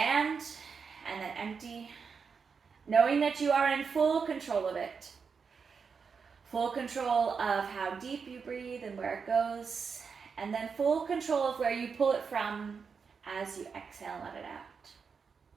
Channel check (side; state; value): left; quieter; 5.7 dB